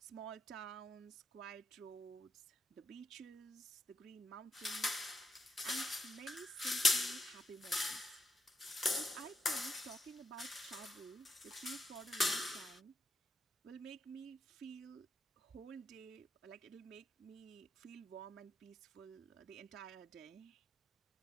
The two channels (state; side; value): normal; both; correlation 0.81